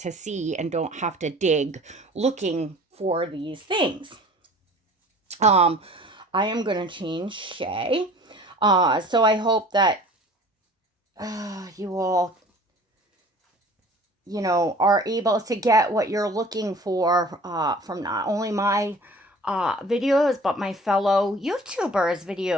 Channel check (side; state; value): both; normal; correlation 0.46